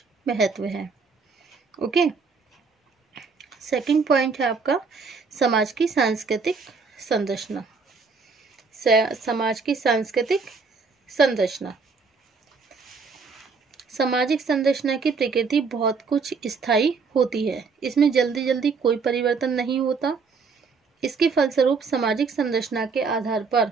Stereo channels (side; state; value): left; quieter; 4.8 dB